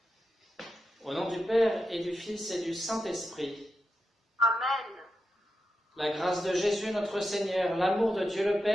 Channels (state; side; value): normal; both; correlation 0.88